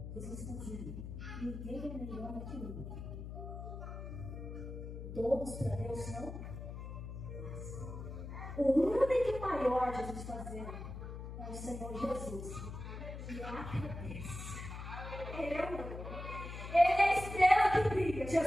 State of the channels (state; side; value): noise; left; hum, 8 dB below the sound